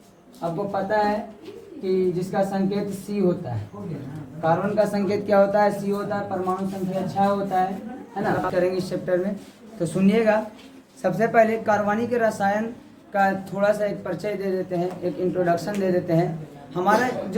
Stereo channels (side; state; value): both; identical; correlation 1.00